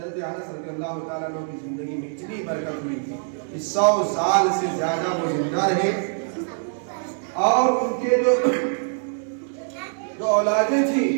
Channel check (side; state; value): left; silent; digital silence